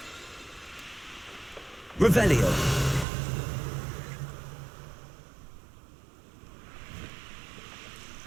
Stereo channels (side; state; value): left; drops out; at 3.1 s